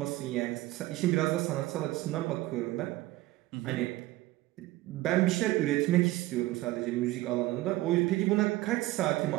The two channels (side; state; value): left; quieter; 17.7 dB